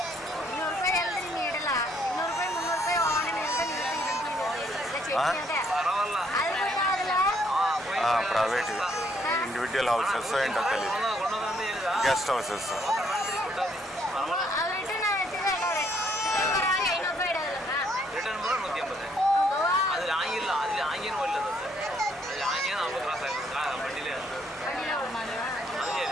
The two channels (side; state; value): both; normal; correlation 0.69